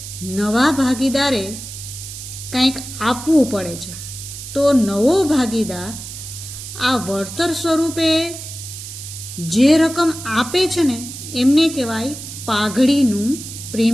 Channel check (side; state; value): right; noise; hiss, 11 dB below the sound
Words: નવા ભાગીદારે કંઈક આપવું પડે છે. તો નવો ભાગીદાર આ વળતર સ્વરૂપે જે રકમ આપે છે ને એમને કહેવાય પાઘડીનું